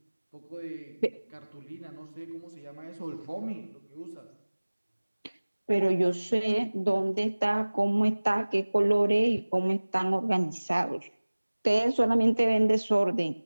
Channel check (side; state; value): both; inverted; correlation -1.00